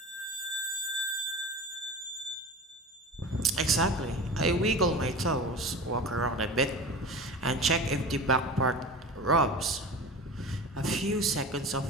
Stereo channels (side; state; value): both; normal; correlation 0.33